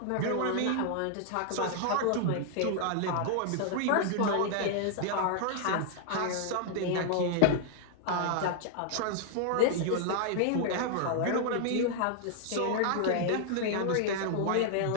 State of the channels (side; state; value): both; different; correlation 0.00